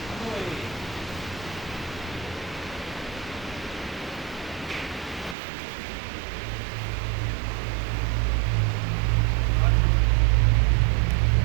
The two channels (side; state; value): left; drops out; at 5.4 s